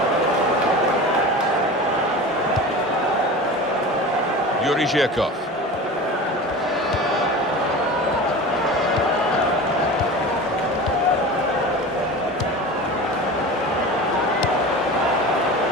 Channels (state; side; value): normal; both; correlation 0.33